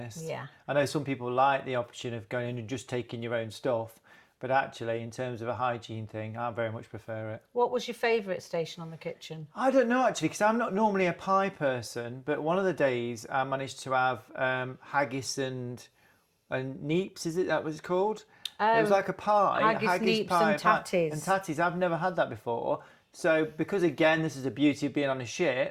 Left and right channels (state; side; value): identical; both; correlation 1.00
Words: Yeah. I know some people like the option of going in and just taking your own stuff, but actually, in terms of a hygiene thing, I very much prefer it. What was your favourite station on the kitchen? I don't know, actually, because I'm not normally a pie person, but one of the days I managed to have haggis and neeps, is it that was called? It was like a pie, haggis, neeps pie, and tatties. And tatties, I've never had that before. So because, again, this is the beauty of being on a